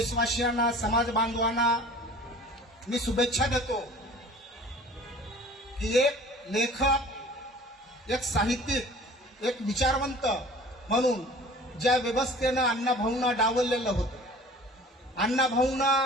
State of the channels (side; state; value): both; normal; correlation 0.46